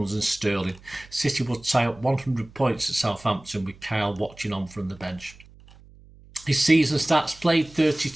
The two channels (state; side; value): noise; right; hum, 24 dB below the sound